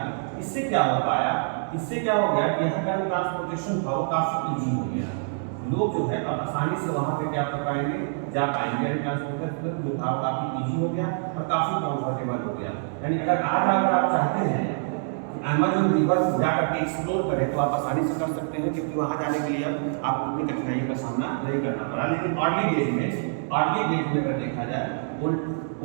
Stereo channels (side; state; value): left; silent; digital silence